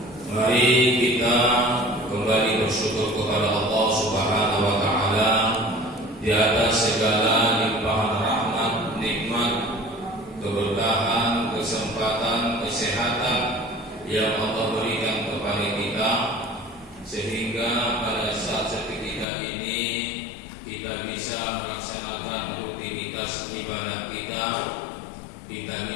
Mari kita kembali bersyukur kepada Allah Subhanahu wa taala di atas segala limpahan rahmat, nikmat, keberkahan, kesempatan, kesehatan yang Allah berikan kepada kita, sehingga pada saat seketika ini kita bisa melaksanakan rutinitas ibadah kita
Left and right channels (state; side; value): drops out; right; at 19.2 s